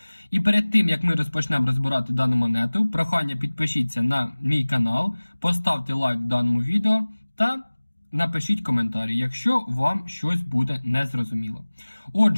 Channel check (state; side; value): inverted; both; correlation -1.00